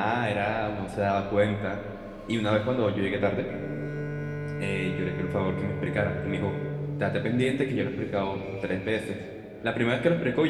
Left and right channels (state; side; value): identical; both; correlation 1.00